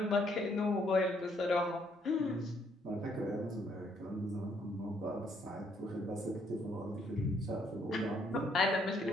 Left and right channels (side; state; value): both; normal; correlation 0.69